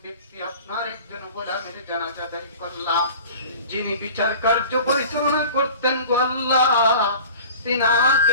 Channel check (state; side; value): inverted; both; correlation -0.40